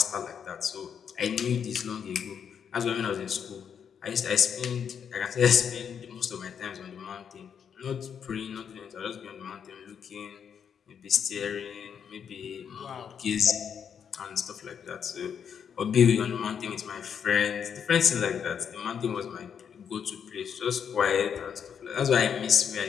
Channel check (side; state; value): right; quieter; 7.6 dB